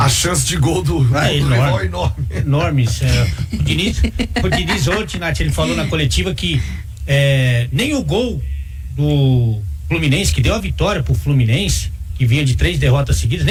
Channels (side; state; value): both; identical; correlation 1.00